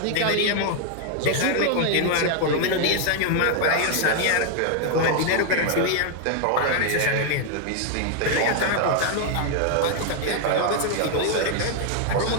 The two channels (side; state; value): both; different; correlation 0.00